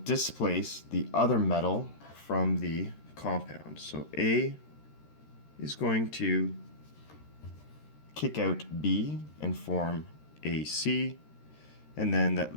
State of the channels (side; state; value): right; late; 13 ms